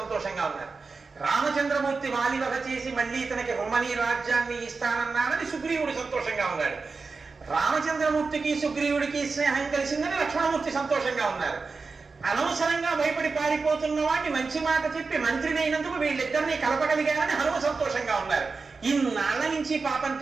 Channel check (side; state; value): left; quieter; 4.4 dB